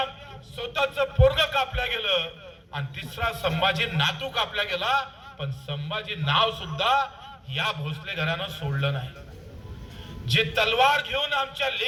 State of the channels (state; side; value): identical; both; correlation 1.00